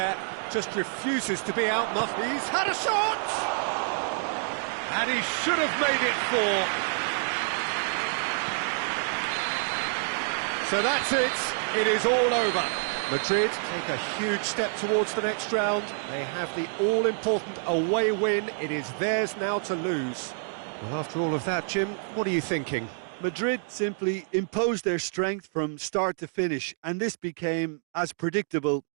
Just refuses to be outmuscled. He's had a shot! And he should have made it 4. So that's it, it is all over. Madrid take a huge step towards the next round. They have the all-important away win. It is theirs now to lose. Well, after all of that, Jim, what are you thinking? Madrid simply imposed their strength from start to finish, and this became as predictable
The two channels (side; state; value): left; silent; 57 dB below the other